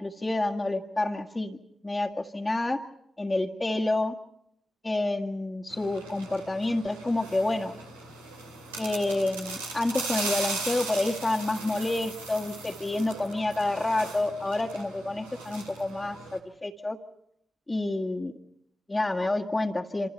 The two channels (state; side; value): normal; both; correlation 0.94